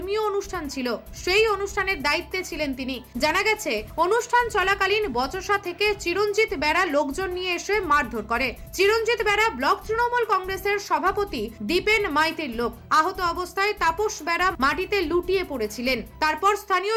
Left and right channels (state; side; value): identical; both; correlation 1.00